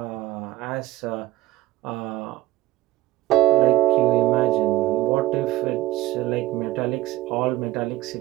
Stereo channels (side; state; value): left; quieter; 15.9 dB